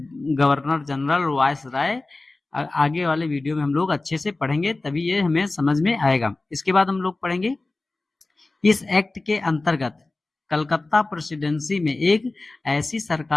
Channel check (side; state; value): right; quieter; 3.2 dB